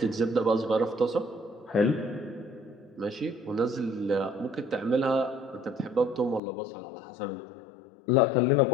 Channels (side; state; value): right; drops out; at 6.4 s